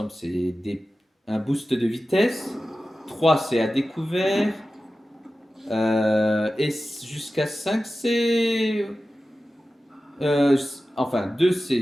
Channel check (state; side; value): normal; both; correlation 0.94